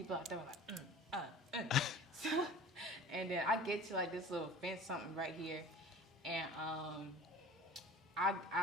out there, like, so, and then I get to, like, this little fence, something right here, and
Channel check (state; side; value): normal; both; correlation 0.43